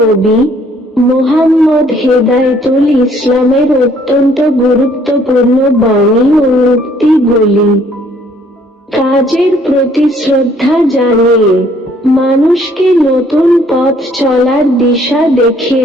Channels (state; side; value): normal; both; correlation 0.62